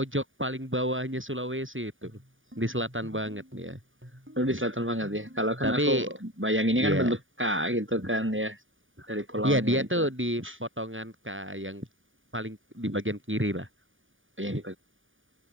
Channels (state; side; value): late; left; 0.57 ms